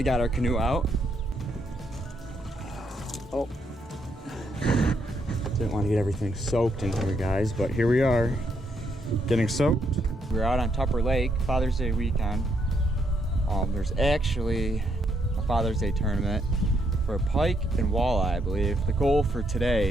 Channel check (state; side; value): normal; both; correlation 0.76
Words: got our canoe out. Oh, didn't want to get everything soaked in here, guys, but here we are, getting soaked. We're out on Tupper Lake, Father's Day weekend. There's actually a Father's Day tournament for pike and walleye, I believe. The goal for